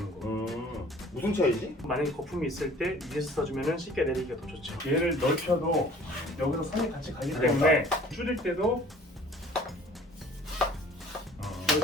거. 무슨 차이지? 만약에 거품이 있을 때 위에서 써주면 쉽게 내리기가 더 좋죠. 얘를 넓혀도 여기서 선이 같이 가기 때문에 줄일 때도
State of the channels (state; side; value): normal; both; correlation 0.51